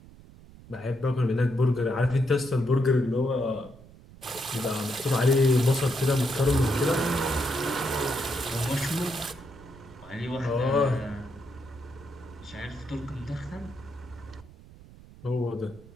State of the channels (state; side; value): noise; right; rumble, 21 dB below the sound